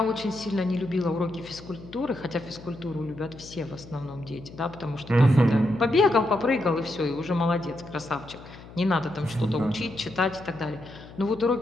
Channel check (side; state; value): left; noise; hum, 18 dB below the sound